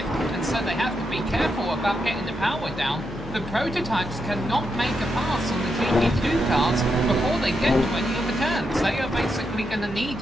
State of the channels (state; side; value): normal; both; correlation 0.84